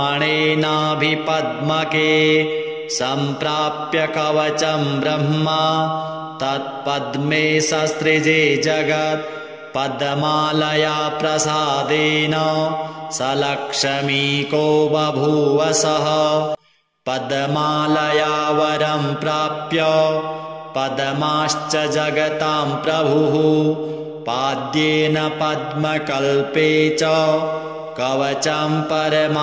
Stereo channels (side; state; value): both; identical; correlation 1.00